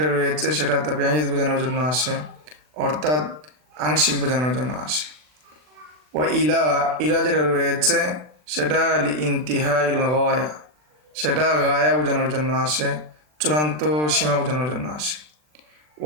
রয়েছে সেটা তাবিঈদ বোঝানোর জন্য আসে, অর্থাৎ আংশিক বোঝানোর জন্য আসে। ওয়া ইলা, ইলা যেটা রয়েছে সেটা লি ইনতিহা ইল গায়া, সেটা গায়া বোঝানোর জন্য আসে, চূড়ান্ত সীমা বোঝানোর জন্য আসে।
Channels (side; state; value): left; late; 40 ms